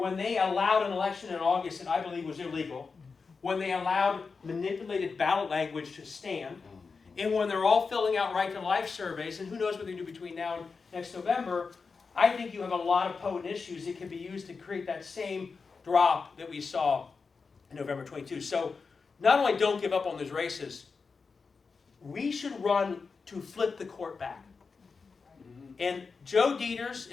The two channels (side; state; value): right; quieter; 4.8 dB